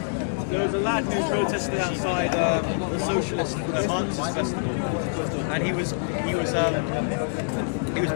a lad who protested outside the Socialist Marxist Festival, and he was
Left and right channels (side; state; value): right; silent; digital silence